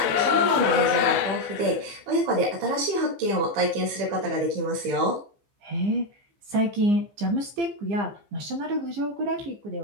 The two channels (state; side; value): late; left; 15 ms